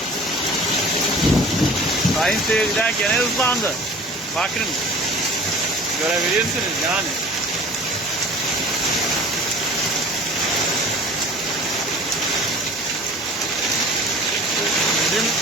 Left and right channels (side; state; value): both; normal; correlation 0.44